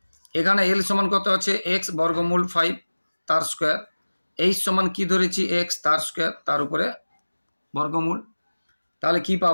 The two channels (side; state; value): both; inverted; correlation -1.00